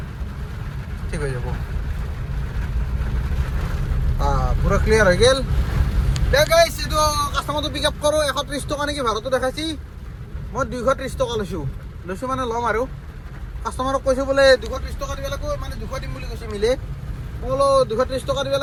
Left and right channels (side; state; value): both; identical; correlation 1.00